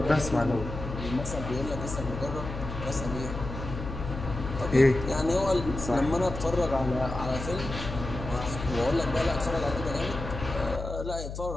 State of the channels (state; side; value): noise; left; hum, 8 dB below the sound